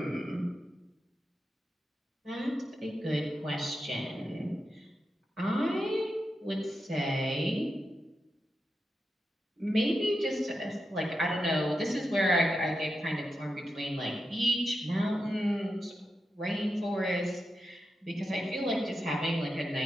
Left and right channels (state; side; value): normal; both; correlation 0.88